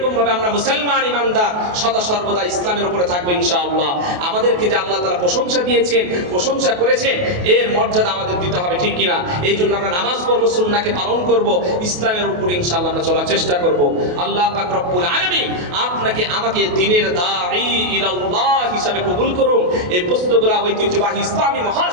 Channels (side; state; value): left; late; 28 ms